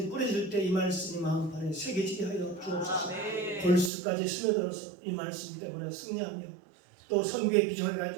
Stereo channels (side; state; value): left; drops out; at 3.9 s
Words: 뿌려질 때 이 말씀이 마음판에 새겨지게 하여 주옵소서. 골수까지 스며들어서 이 말씀 때문에 승리하며 또 선교의 비전을